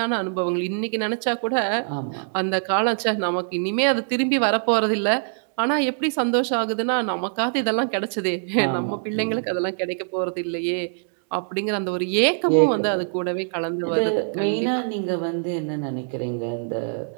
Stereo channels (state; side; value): silent; left; digital silence